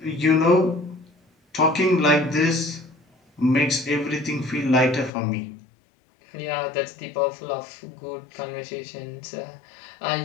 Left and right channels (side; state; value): right; drops out; at 5.1 s